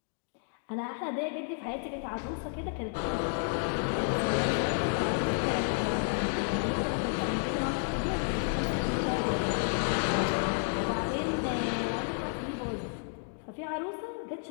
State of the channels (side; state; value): right; silent; digital silence